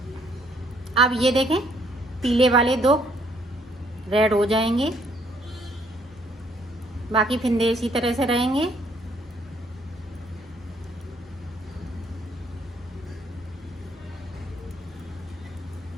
अब ये देखें पीले वाले 2 रेड हो जाएंगे, बाकी फिंदे इसी तरह से रहेंगे।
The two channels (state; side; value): normal; both; correlation 0.67